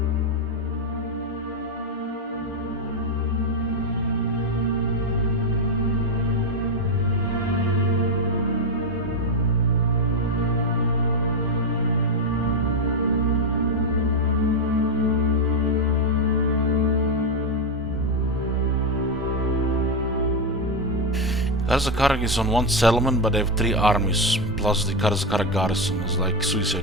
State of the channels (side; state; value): both; normal; correlation 0.07